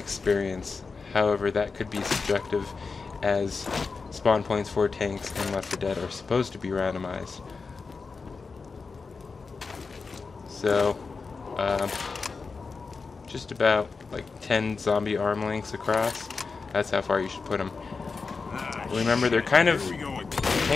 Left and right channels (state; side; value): quieter; right; 4.6 dB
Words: However, that could be subjective, as spawn points for tanks in Left 4 Dead are supposed to be randomized. So just about like 10 zombie arm lengths across. That's how far you should put them. Remember, they're kind of...